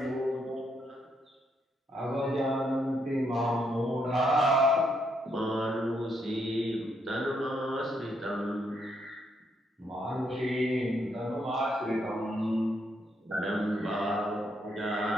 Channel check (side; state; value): both; normal; correlation 0.76